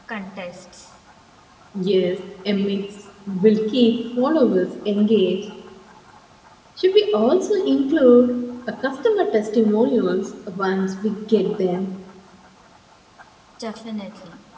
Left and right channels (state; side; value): identical; both; correlation 1.00